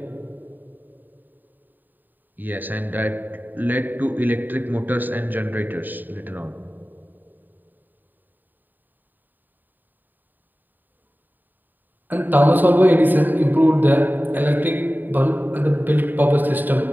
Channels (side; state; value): left; late; 0.089 ms